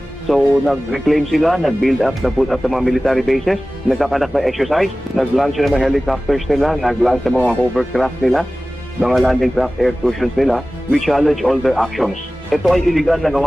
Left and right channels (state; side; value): normal; both; correlation 0.97